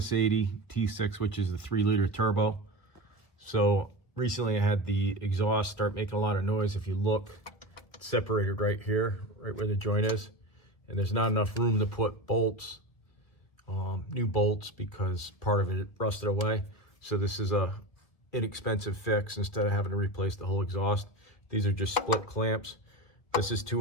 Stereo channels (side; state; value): right; late; 1.4 ms